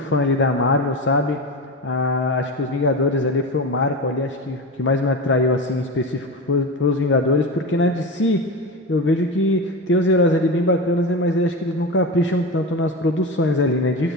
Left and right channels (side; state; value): both; normal; correlation 0.23